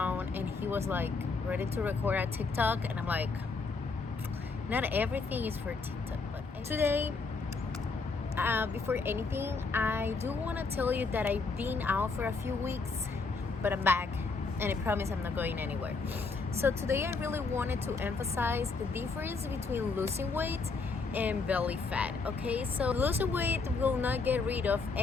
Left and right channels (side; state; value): right; quieter; 4.2 dB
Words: and he was like ready to record a TikTok, and I'm like, not everything is for TikTok. But today, before anything, I do want to tell you that I've been out for a few weeks, but I'm back, and I promise I'm not going anywhere. So today I really wanted to emphasize the difference between losing weight and belly fat. Okay, so losing weight will not get rid of